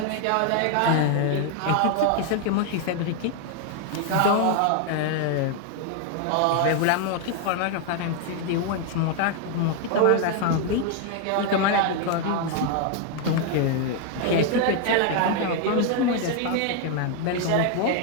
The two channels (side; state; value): both; different; correlation 0.00